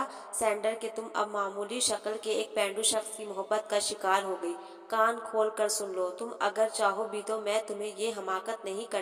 سینڈر کہ تم اب معمولی شکل کے ایک پینڈو شخص کی محبت کا شکار ہو گئی۔ کان کھول کر سن لو، تم اگر چاہو بھی تو میں تمہیں یہ حماقت نہیں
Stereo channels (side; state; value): both; identical; correlation 1.00